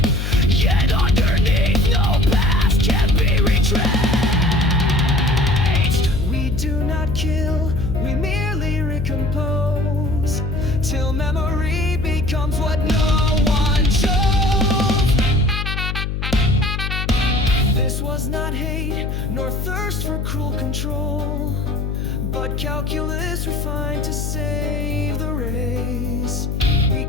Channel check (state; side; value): noise; left; hum, 2 dB below the sound